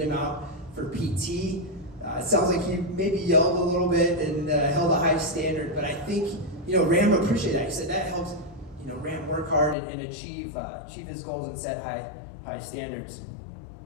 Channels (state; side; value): drops out; right; at 9.8 s